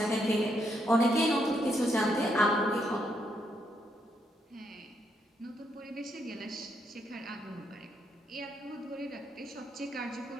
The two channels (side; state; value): both; normal; correlation 0.77